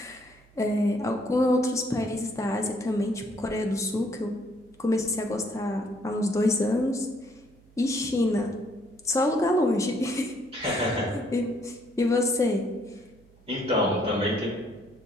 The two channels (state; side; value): noise; right; hum, 28 dB below the sound